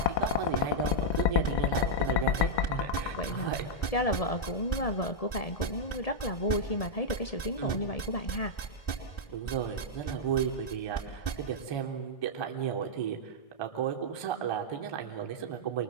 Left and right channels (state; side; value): late; right; 1.3 ms